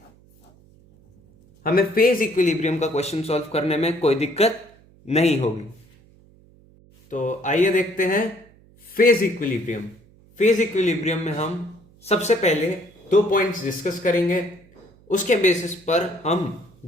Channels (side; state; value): right; noise; hum, 28 dB below the sound